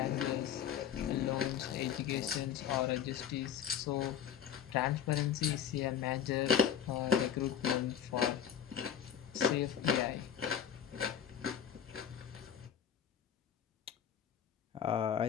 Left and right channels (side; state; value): right; quieter; 9.0 dB